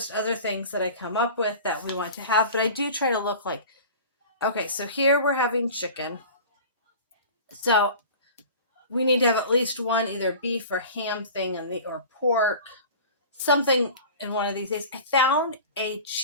other things that I come up with that we want to have, but I do try to look like, okay, so here we're having chicken. So we need to have at least one either beef or ham thing or pork, something in one of these days. I found a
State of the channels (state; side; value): inverted; both; correlation -0.38